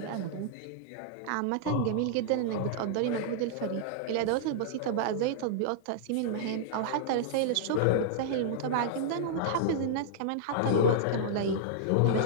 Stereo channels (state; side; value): different; both; correlation -0.02